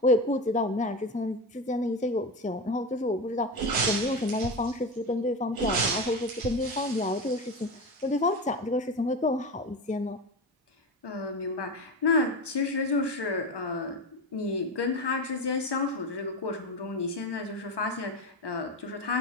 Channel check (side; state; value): both; normal; correlation 0.21